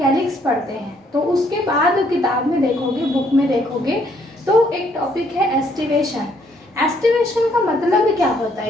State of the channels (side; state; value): both; normal; correlation 0.68